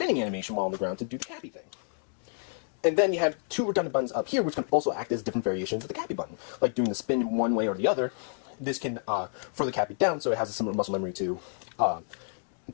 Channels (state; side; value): silent; right; 58 dB below the other